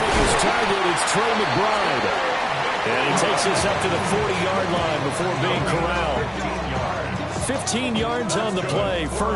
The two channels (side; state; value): both; identical; correlation 1.00